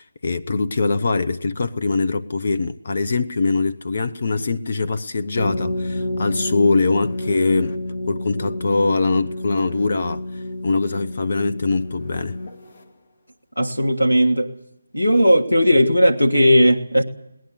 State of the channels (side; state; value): both; inverted; correlation -0.93